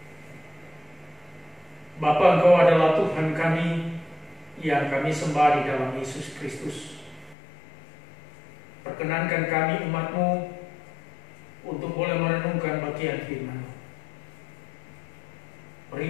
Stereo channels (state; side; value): drops out; right; at 7.4 s